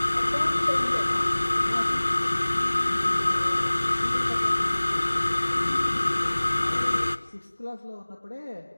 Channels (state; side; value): inverted; both; correlation -1.00